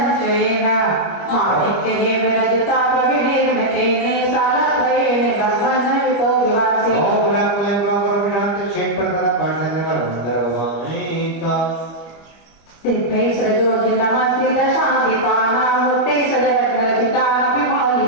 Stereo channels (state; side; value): late; right; 25 ms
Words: माणिक्येन विरजिता प्रविनिर्मितेन सालत्रयेण भगवन्वितो विवासे दिव्यै सजोजि नमस्ते दशादिपानामूर्ते सजरत्नरचितानपि